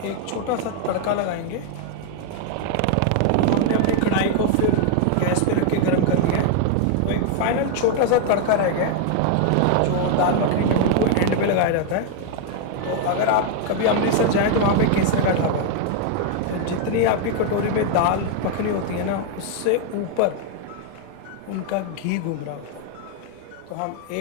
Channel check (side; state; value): both; different; correlation 0.00